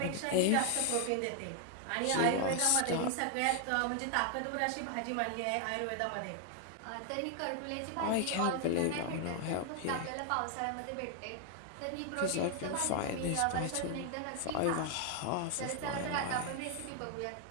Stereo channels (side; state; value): both; different; correlation 0.00